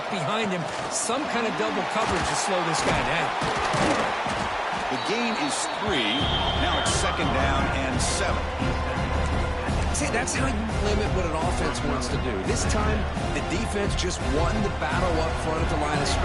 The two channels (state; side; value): identical; both; correlation 1.00